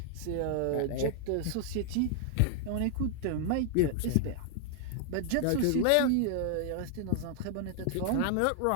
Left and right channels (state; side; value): different; both; correlation 0.00